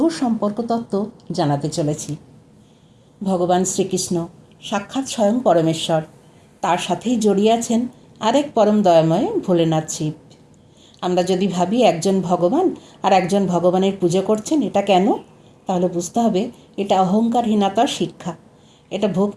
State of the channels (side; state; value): both; identical; correlation 1.00